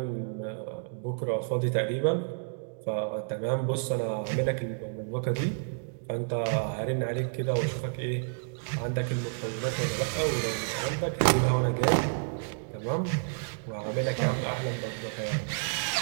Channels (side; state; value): left; silent; digital silence